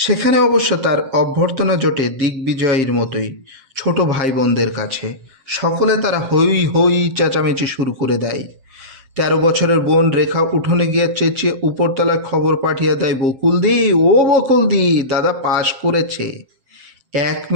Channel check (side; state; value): left; late; 7.5 ms